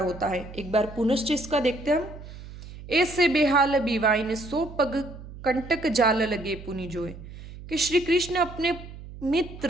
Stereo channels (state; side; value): noise; right; hum, 14 dB below the sound